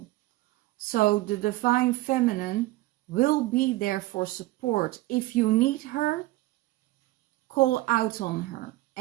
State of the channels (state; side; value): quieter; left; 18.4 dB